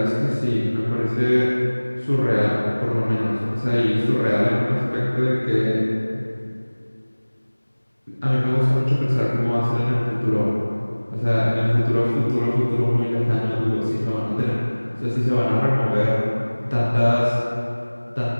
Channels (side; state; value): both; inverted; correlation -1.00